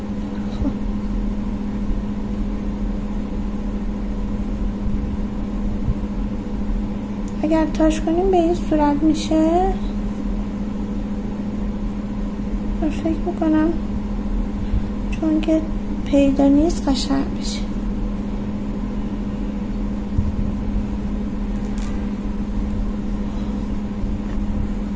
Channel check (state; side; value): identical; both; correlation 1.00